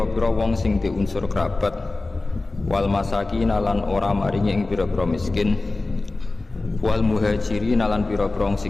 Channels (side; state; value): right; quieter; 3.2 dB